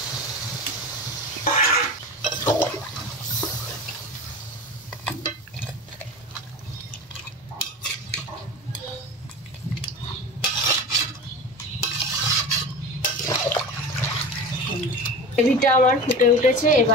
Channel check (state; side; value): normal; both; correlation 0.31